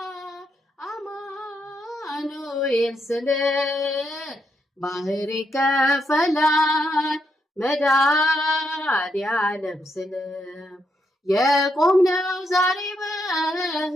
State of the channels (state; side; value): normal; both; correlation 0.79